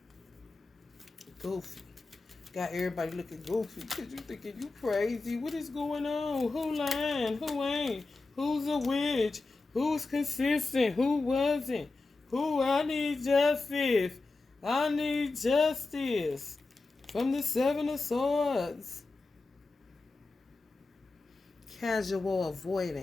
Goofy. Got everybody looking goofy because you thinking you crazy. What is going on? Who lying? Who ain't? Who's a witch? Who's consistent? Who wasn't? Who? I need justice. I need justice. From the 7 of Swords. Casual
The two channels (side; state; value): right; quieter; 3.5 dB